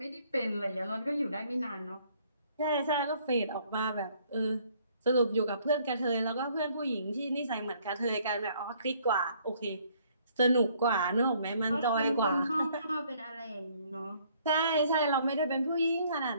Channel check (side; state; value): both; inverted; correlation -0.63